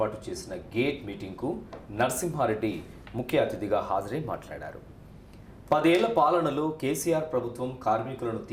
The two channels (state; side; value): identical; both; correlation 1.00